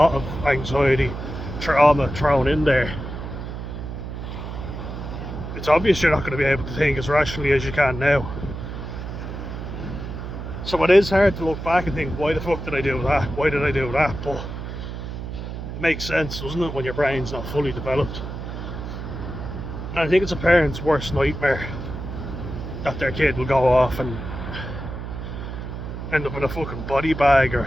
of anxiety, trauma thrown in there. It's obvious you're not going to be able to think as rationally as you can now. So it is hard to look back and think, why the fuck did I do that? Why did I do that? But it makes sense, doesn't it, when your brain's not fully developed? And I think it's a parent's worst nightmare that their kid will go off and end up in a fucking body bag,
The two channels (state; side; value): noise; right; hum, 7 dB below the sound